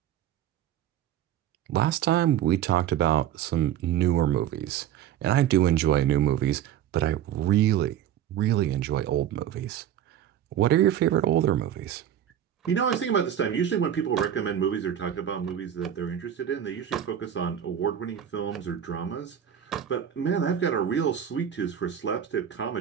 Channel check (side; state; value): left; quieter; 10.4 dB